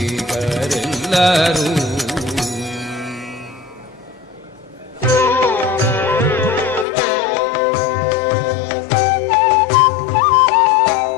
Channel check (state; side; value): drops out; right; at 6.9 s